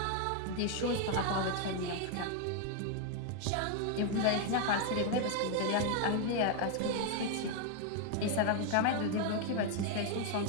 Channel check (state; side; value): different; both; correlation 0.01